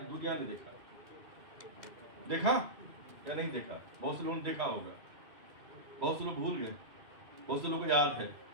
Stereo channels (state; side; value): late; left; 2.5 ms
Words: ने देखा या नहीं देखा? बहुत से लोगों ने देखा होगा, बहुत से लोग भूल गए, बहुत से लोगों को याद है,